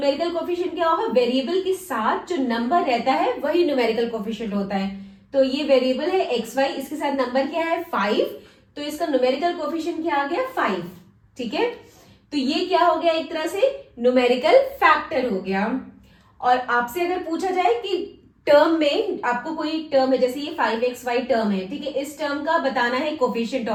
कोफिशिएंट क्या होगा, वेरिएबल के साथ जो नंबर रहता है वही न्यूमेरिकल कोफिशिएंट होता है। तो ये वेरिएबल है xy, इसके साथ नंबर क्या है 5, तो इसका न्यूमेरिकल कोफिशिएंट क्या आ गया 5। ठीक है, तो ये क्या हो गया, एक तरह से न्यूमेरिकल फैक्टर हो गया। और आपसे अगर पूछा जाए कि टर्म में आपको कोई टर्म है, जैसे ये 5xy टर्म है, ठीक है, इस टर्म का बताना है कोफिशिएंट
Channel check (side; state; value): both; identical; correlation 1.00